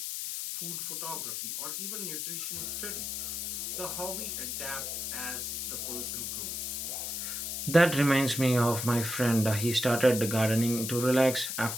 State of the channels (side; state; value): left; noise; hiss, 3 dB below the sound